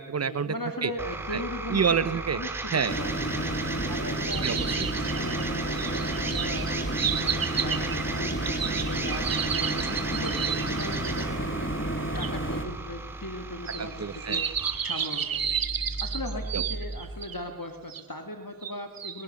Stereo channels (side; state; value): left; quieter; 3.3 dB